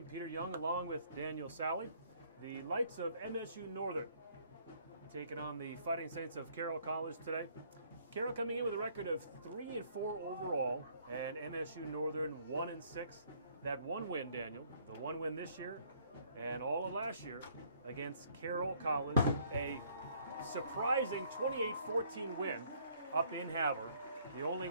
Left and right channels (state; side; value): inverted; both; correlation -0.63